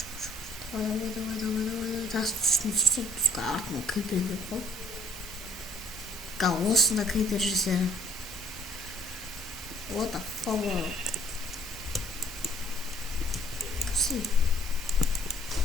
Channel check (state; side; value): normal; both; correlation 0.59